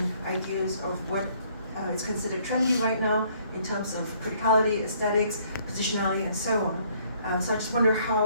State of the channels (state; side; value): inverted; both; correlation -0.64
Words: ideas of what is considered trendy right now in terms of criticality, aesthetics, positionality, and so on. So I just wonder